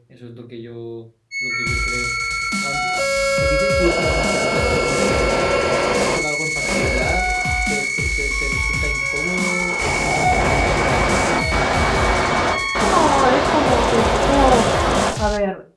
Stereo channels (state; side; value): identical; both; correlation 1.00